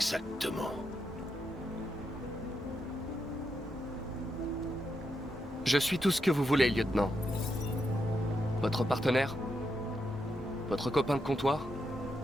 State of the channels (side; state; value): both; normal; correlation 0.83